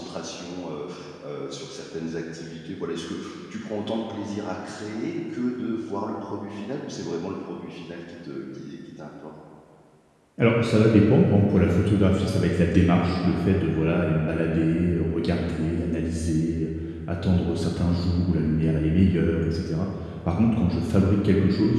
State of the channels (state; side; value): identical; both; correlation 1.00